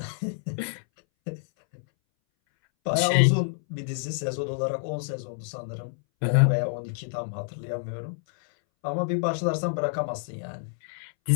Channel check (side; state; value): right; silent; 60 dB below the other